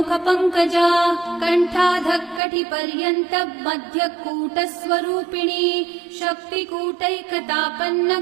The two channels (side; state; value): left; drops out; at 2.4 s